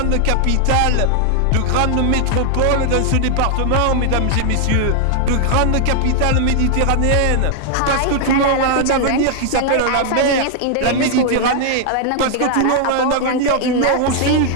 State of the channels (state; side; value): different; both; correlation 0.00